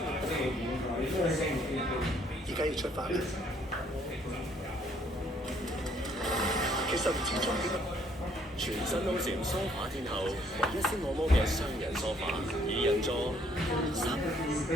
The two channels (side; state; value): both; normal; correlation 0.65